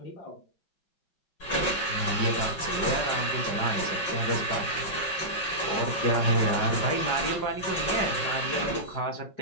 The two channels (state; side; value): late; right; 5.4 ms